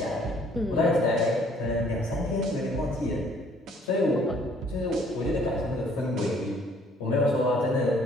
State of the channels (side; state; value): both; normal; correlation 0.60